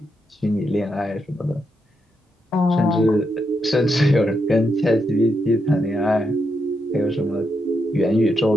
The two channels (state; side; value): normal; both; correlation 0.82